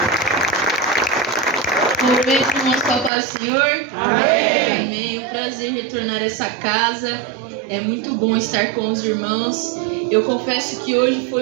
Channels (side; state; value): left; drops out; at 3.1 s